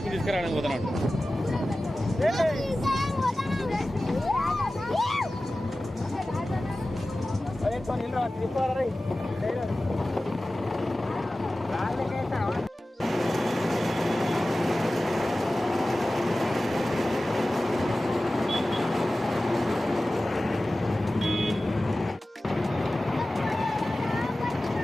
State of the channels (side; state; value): both; normal; correlation 0.96